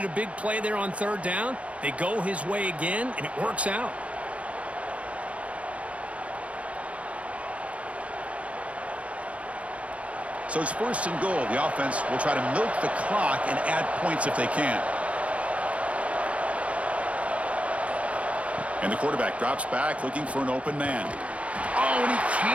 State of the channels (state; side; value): late; left; 0.064 ms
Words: a big play there on 3rd down. They go his way again, and it works out. So it's 1st and goal. The offense will try to milk the clock and add points if they can. And the quarterback drops back looking for an open man. Oh, and he